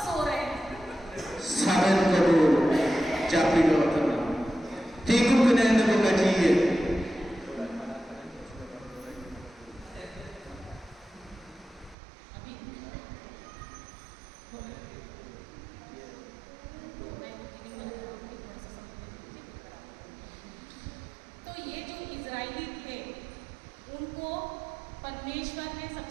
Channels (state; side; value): drops out; left; at 12.0 s